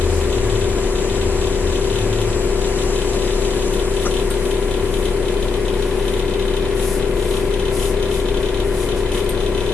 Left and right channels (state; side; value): quieter; right; 4.5 dB